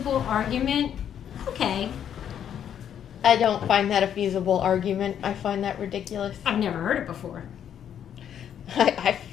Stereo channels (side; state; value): right; quieter; 9.3 dB